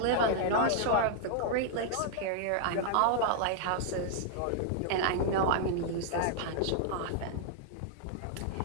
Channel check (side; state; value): both; different; correlation -0.01